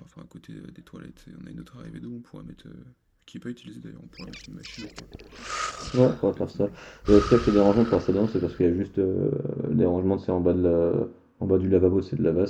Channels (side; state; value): both; identical; correlation 1.00